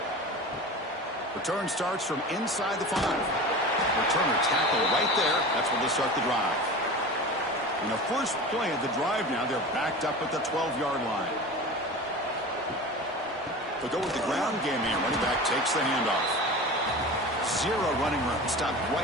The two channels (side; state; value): both; normal; correlation 0.33